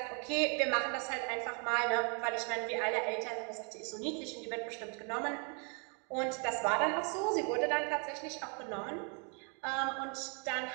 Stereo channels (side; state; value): left; quieter; 37.0 dB